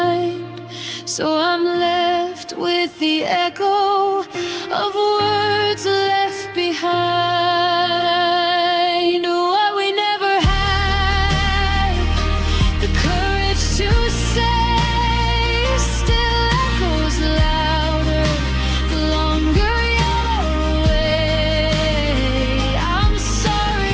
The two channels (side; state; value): both; identical; correlation 1.00